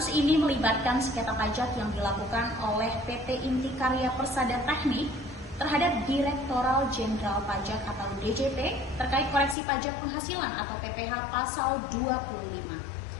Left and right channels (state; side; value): drops out; right; at 9.6 s